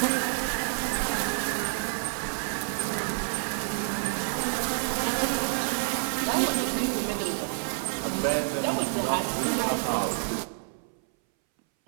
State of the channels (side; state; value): left; silent; 59 dB below the other